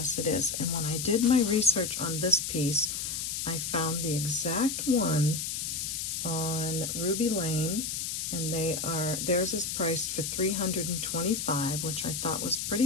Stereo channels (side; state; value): left; noise; hiss, 3 dB below the sound